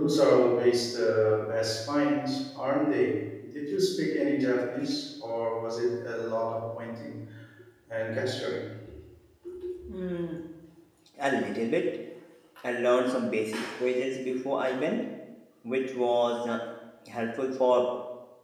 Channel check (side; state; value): both; identical; correlation 1.00